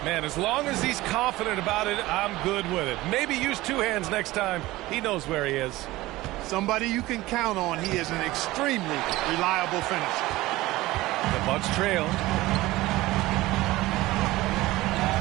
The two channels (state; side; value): quieter; left; 18.4 dB